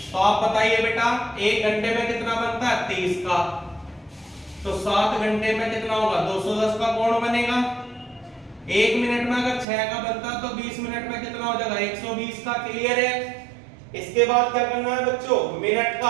तो आप बताइए बेटा, 1 घंटे में कितना बनता है? 30 का। तो 7 घंटे में कितना होगा? 210 का कोण बनेगा। 1 मिनट में अगर 6 का बनता तो 20 मिनट में कितना हो जाएगा? 120 का। क्लियर है? इसके बाद क्या करना है बच्चों? मिनट का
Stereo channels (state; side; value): drops out; left; at 9.7 s